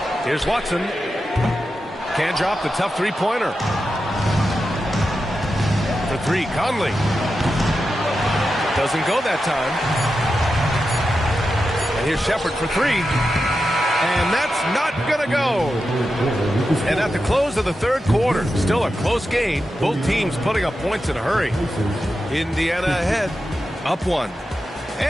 Here's Watson. Can't drop the tough three-pointer. For 3, Conley. Doesn't go that time. And here's Shepherd for 3. And that's not going to go. And at the close of the third quarter, still a close game. Both teams putting up points in a hurry. Indiana ahead, up 1.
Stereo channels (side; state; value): both; normal; correlation 0.90